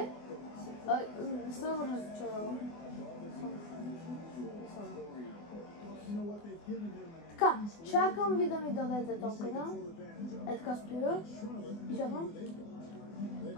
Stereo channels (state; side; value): late; right; 24 ms